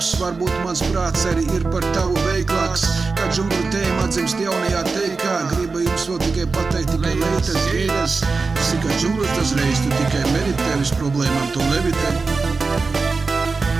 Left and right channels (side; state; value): left; quieter; 4.2 dB